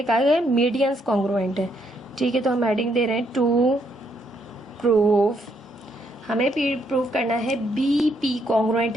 कहा गया है मीडियंस कॉन्ग्रुएंट है। ठीक है, तो हम हेडिंग दे रहे हैं टू प्रूफ, हमें प्रूफ करना है बी पी कॉन्ग्रुएंट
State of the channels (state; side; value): normal; both; correlation 0.73